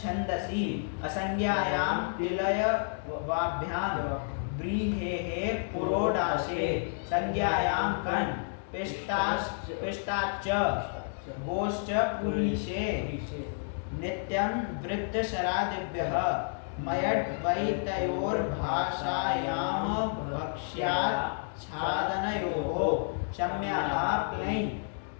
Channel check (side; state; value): right; silent; digital silence